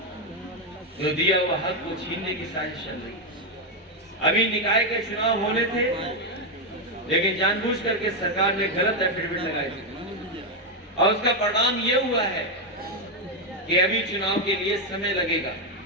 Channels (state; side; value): normal; both; correlation 0.04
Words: जो दिया हुआ हक को छीनने की साजिश चल रही है। अभी निकाय के चुनाव होने थे, लेकिन जानबूझ करके सरकार ने गलत एफिडेविट लगाई थी और उसका परिणाम ये हुआ है कि अभी चुनाव के लिए समय लगेगा।